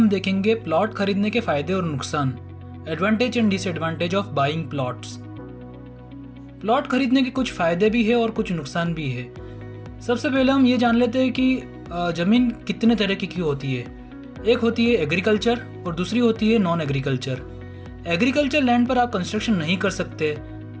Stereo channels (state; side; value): identical; both; correlation 1.00